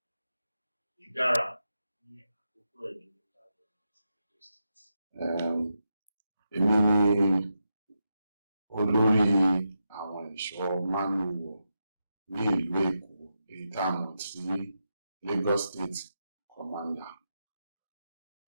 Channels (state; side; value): inverted; both; correlation -0.86